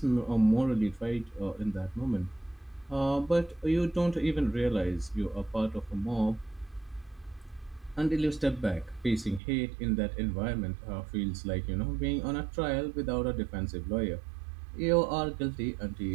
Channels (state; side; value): drops out; left; at 9.4 s